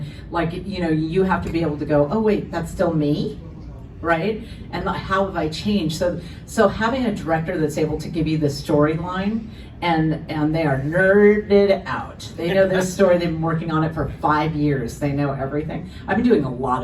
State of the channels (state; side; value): identical; both; correlation 1.00